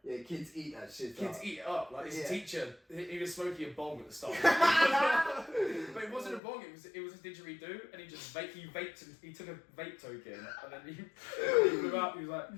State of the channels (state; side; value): drops out; right; at 6.4 s